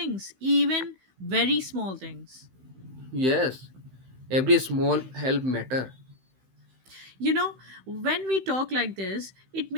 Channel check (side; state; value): left; late; 15 ms